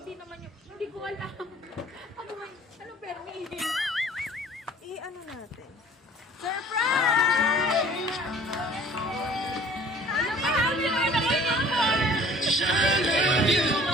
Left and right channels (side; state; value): both; normal; correlation 0.51